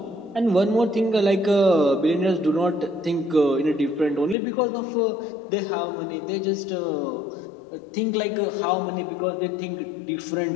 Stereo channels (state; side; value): drops out; right; at 4.4 s